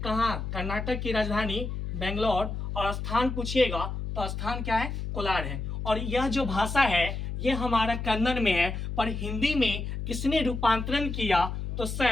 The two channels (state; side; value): noise; left; hum, 4 dB below the sound